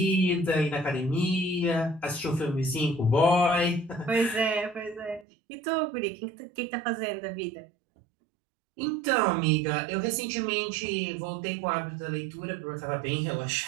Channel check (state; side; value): drops out; left; at 5.2 s